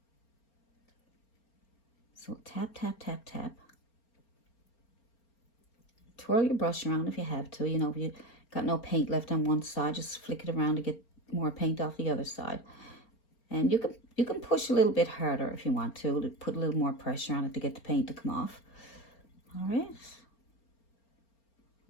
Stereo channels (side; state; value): right; late; 4.4 ms